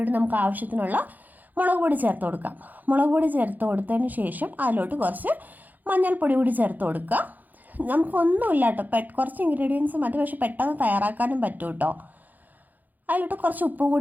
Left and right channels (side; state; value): left; late; 0.083 ms